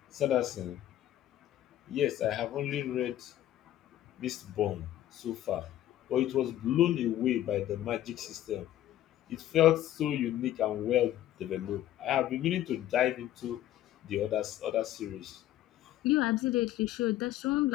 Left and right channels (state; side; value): quieter; right; 13.0 dB